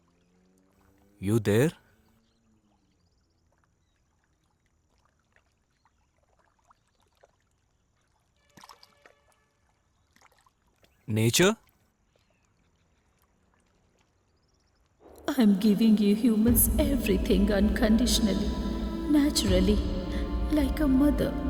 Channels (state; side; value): identical; both; correlation 1.00